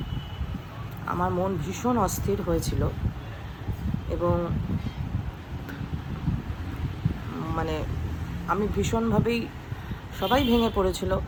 আমার মন ভীষণ অস্থির হয়েছিল, এবং মানে আমি ভীষণভাবেই, সবাই ভেঙে পড়েছিল,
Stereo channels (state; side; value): identical; both; correlation 1.00